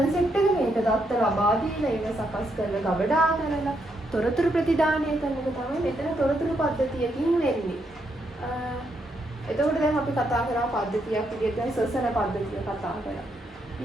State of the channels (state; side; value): normal; both; correlation 0.78